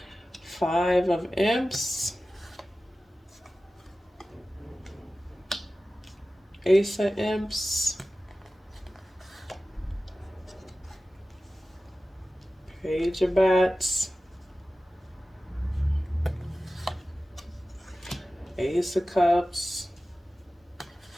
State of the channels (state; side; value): normal; both; correlation 0.95